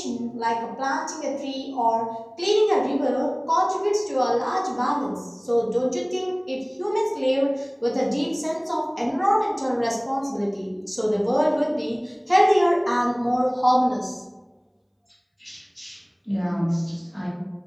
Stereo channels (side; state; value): both; identical; correlation 1.00